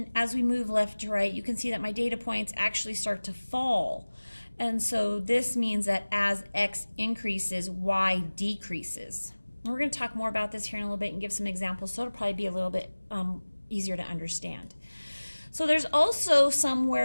as we move left to right, you can see that my data points actually start to fall. And so this means that as x increases, y decreases. And we're going to talk more about this here in a little bit and give some examples, so it'll probably be a little bit easier to understand. So there's also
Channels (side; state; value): both; inverted; correlation -1.00